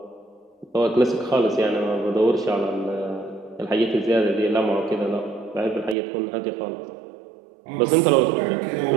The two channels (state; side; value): drops out; left; at 6.0 s